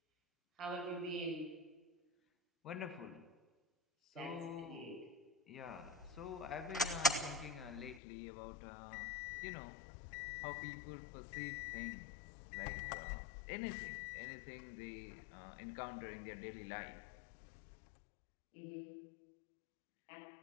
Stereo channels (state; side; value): drops out; right; at 8.0 s